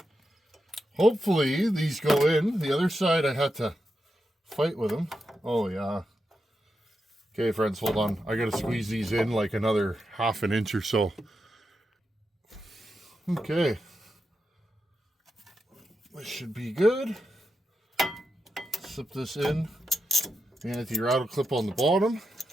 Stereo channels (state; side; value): normal; both; correlation 0.87